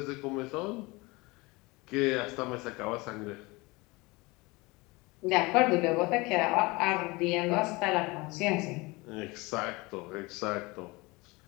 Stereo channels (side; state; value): right; quieter; 24.0 dB